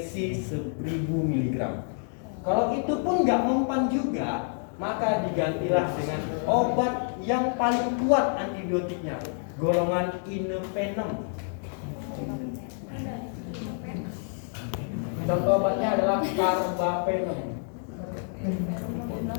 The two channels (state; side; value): silent; right; 57 dB below the other